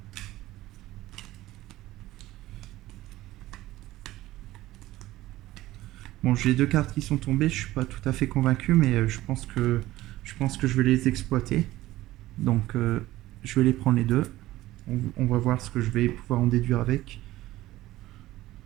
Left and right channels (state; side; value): quieter; left; 16.4 dB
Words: Bon, j'ai deux cartes qui sont tombées, je suis pas tout à fait convaincu, mais je pense que je vais les exploiter. Donc je vais les prendre les deux. On va voir ce que je vais pouvoir en déduire avec.